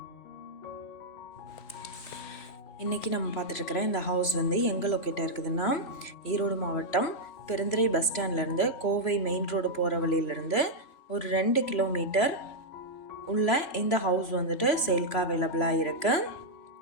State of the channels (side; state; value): right; late; 3.0 ms